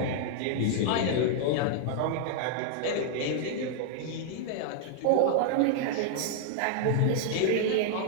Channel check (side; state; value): both; different; correlation -0.01